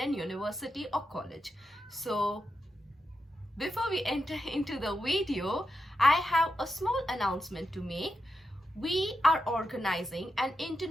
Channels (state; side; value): normal; both; correlation 0.86